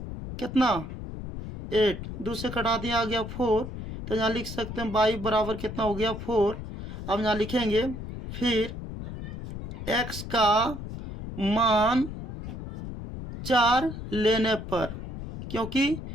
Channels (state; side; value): noise; left; rumble, 9 dB below the sound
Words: कितना 8, 2 से कटा दिया आ गया 4, तो यहाँ लिख सकते हैं बाई बराबर कितना हो गया 4। अब यहाँ लिखेंगे फिर x का मान 4 लेने पर, क्योंकि